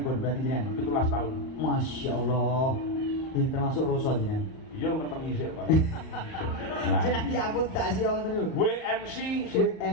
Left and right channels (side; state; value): right; late; 38 ms